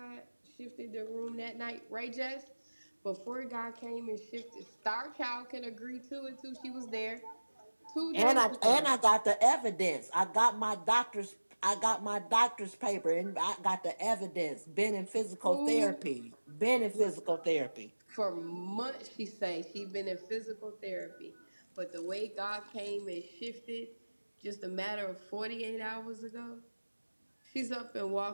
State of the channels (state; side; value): inverted; both; correlation -1.00